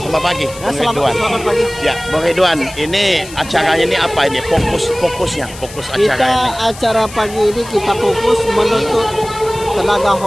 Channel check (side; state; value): left; noise; hiss, 16 dB below the sound